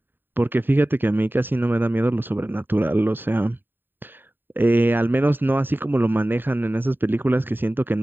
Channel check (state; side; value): late; left; 0.094 ms